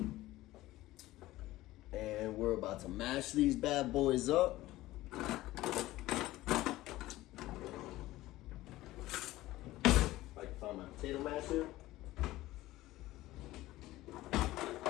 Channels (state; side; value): quieter; right; 17.0 dB